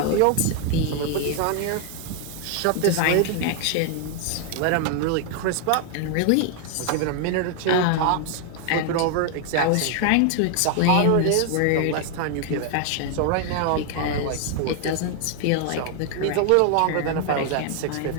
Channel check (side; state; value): both; different; correlation 0.00